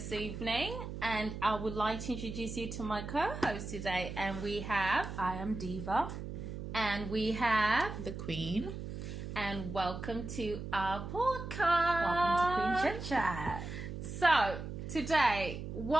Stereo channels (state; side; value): noise; right; hum, 7 dB below the sound